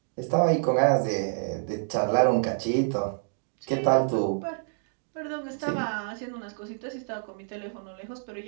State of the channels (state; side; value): silent; left; digital silence